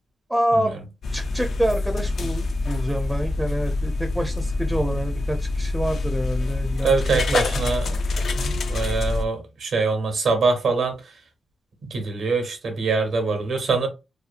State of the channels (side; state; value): both; normal; correlation 0.85